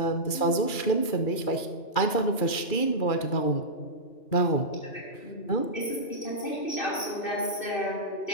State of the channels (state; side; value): late; right; 2.4 ms